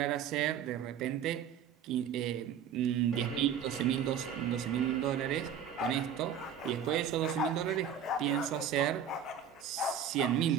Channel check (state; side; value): quieter; left; 7.9 dB